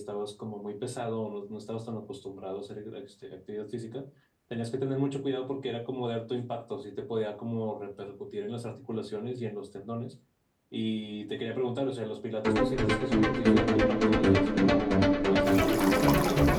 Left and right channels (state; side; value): identical; both; correlation 1.00